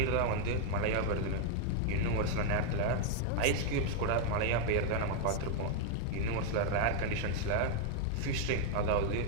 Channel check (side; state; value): both; different; correlation 0.00